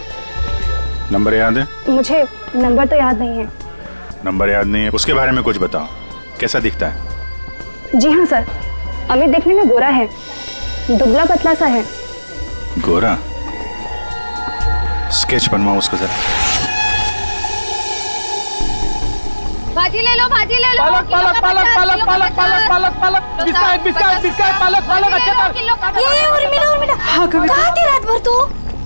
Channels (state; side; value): inverted; both; correlation -1.00